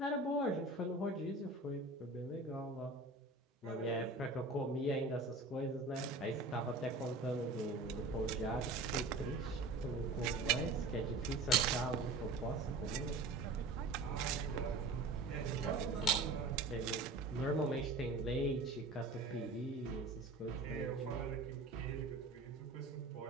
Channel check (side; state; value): left; quieter; 3.2 dB